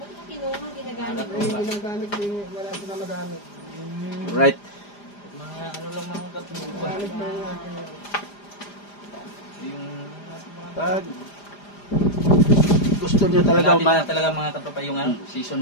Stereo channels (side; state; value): right; late; 4.9 ms